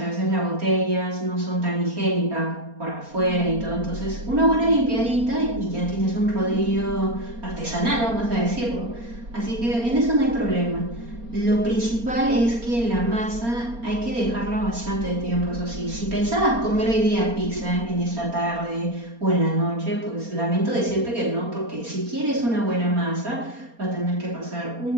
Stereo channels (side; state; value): left; late; 4.3 ms